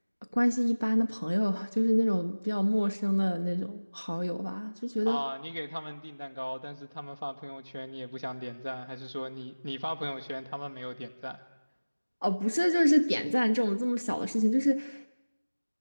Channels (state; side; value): inverted; both; correlation -1.00